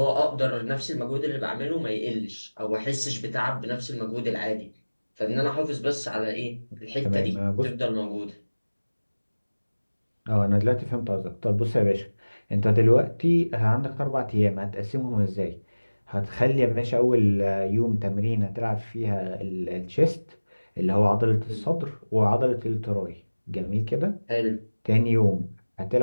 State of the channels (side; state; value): both; inverted; correlation -1.00